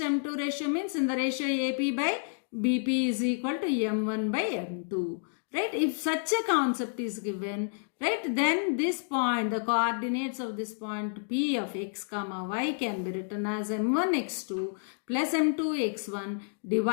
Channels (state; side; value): silent; right; digital silence